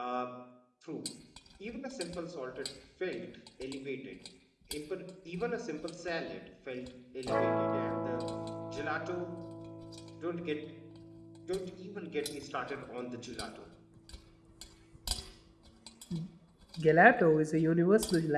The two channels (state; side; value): identical; both; correlation 1.00